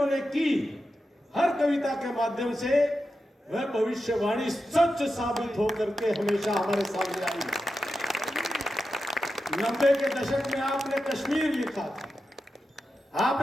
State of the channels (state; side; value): normal; both; correlation 0.90